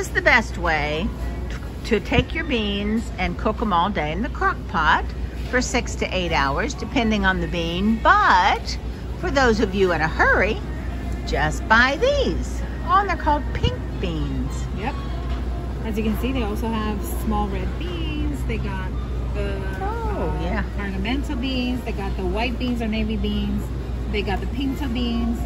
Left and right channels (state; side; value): identical; both; correlation 1.00